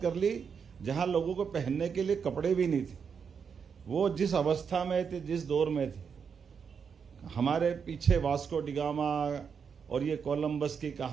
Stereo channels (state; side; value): quieter; left; 6.5 dB